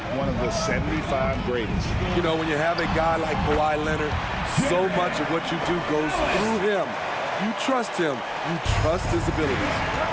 one of the 75 greatest. You know, when you have a guy like Kawhi Leonard, so much of what you do goes through him. You trust him. You trust his abilities.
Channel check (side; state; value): both; identical; correlation 1.00